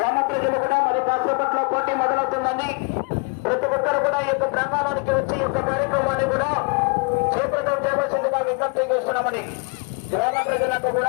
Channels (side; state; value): right; quieter; 34.3 dB